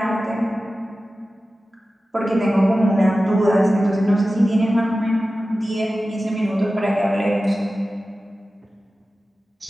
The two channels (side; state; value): both; normal; correlation 0.95